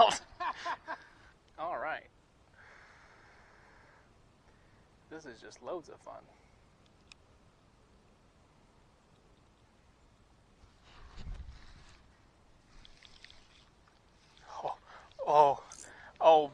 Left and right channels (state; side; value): identical; both; correlation 1.00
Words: All right. This is just loads of fun.